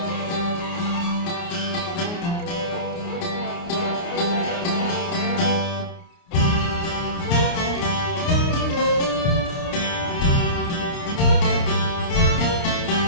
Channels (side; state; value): right; late; 29 ms